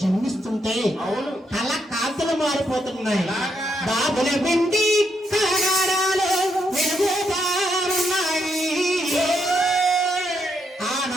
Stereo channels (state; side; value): normal; both; correlation 0.78